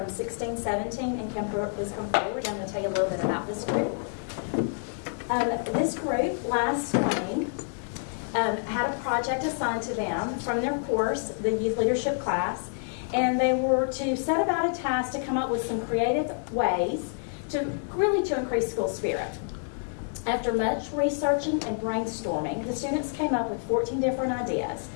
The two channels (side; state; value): right; silent; digital silence